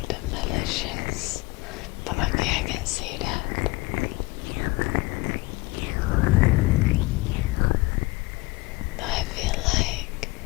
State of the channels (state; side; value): quieter; right; 23.0 dB